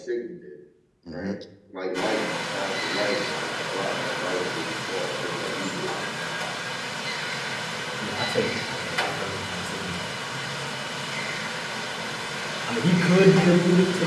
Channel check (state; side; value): identical; both; correlation 1.00